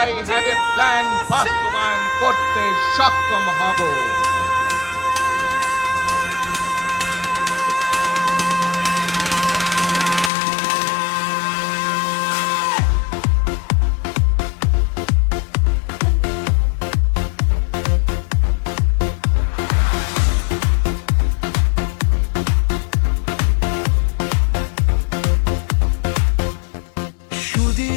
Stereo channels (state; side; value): drops out; right; at 10.3 s